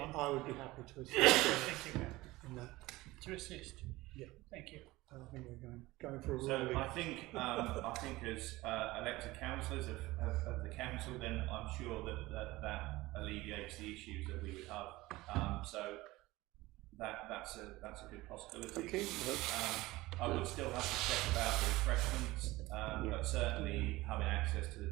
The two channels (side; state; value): left; quieter; 19.4 dB